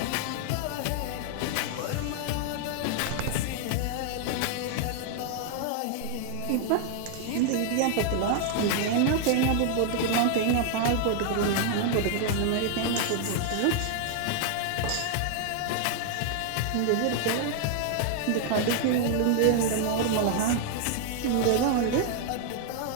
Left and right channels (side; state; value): both; different; correlation 0.00